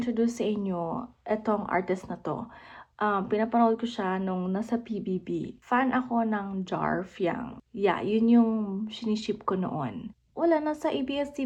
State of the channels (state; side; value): identical; both; correlation 1.00